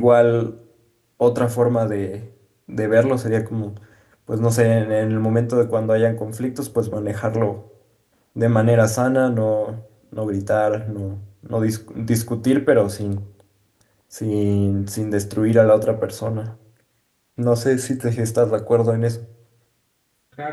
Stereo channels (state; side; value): identical; both; correlation 1.00